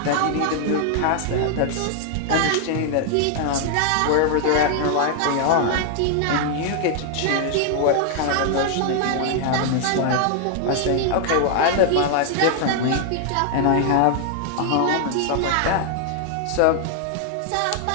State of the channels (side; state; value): both; different; correlation 0.00